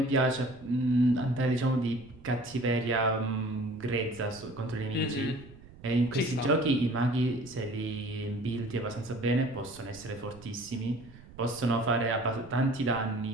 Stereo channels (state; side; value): noise; right; rumble, 20 dB below the sound